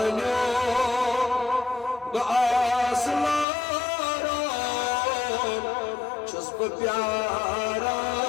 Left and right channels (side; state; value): right; drops out; at 3.5 s